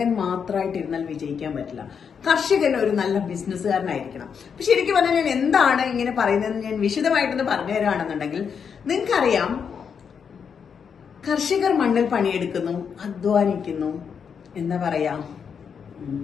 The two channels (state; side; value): quieter; right; 6.8 dB